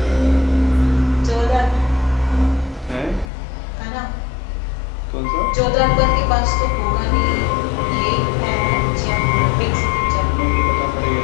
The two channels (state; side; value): drops out; right; at 3.2 s